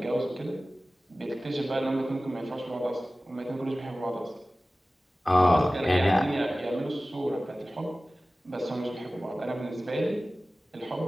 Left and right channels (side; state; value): both; normal; correlation 0.97